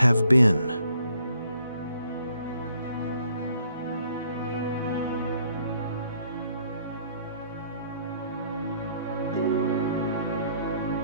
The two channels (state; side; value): inverted; both; correlation -0.66